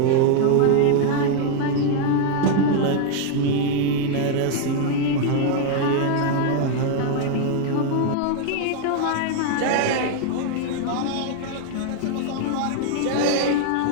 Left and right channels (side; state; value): both; different; correlation 0.00